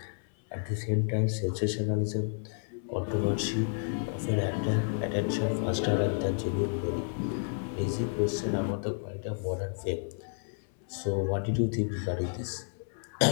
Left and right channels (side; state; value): right; silent; 57 dB below the other